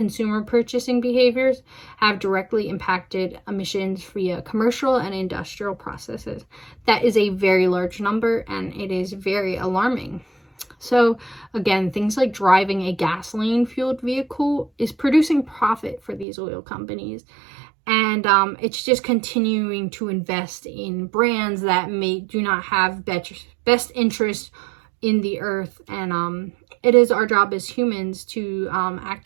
purchasing behaviors have directly impacted emissions via commercial and industrial processes. That is a very large number, and it is very alarming. So again, things like driving a gasoline-fueled vehicle is producing profit for these oil companies. And it's just continuing to invest in brands that do not have best interest in the earth. And it is our job as humans to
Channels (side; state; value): left; drops out; at 16.2 s